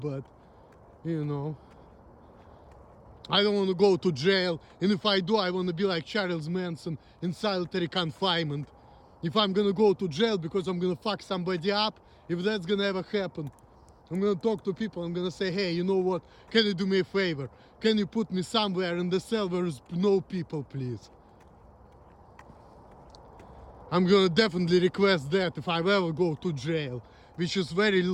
you know. I don't want to go to jail, and if I do, I want to be like Charles Manson in solitary confinement. If I'm gonna go to jail because I'm gonna fuck somebody up, if that's gonna ever happen, I'm gonna talk to people, I'm gonna say, hey, you know what, can you do me a favor? Can you put me somewhere in the cell where there's no people, please? I'm gonna definitely request that if I ever go to jail, which is very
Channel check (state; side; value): identical; both; correlation 1.00